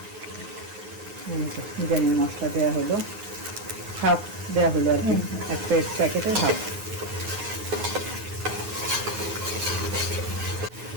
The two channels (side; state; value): left; late; 9.6 ms